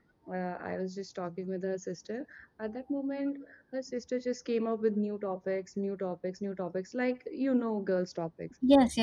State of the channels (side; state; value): both; identical; correlation 1.00